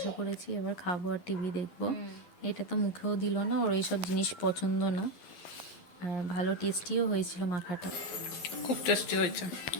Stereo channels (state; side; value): late; right; 11 ms